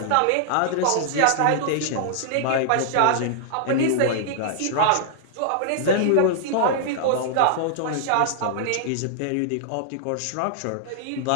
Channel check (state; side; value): different; both; correlation -0.01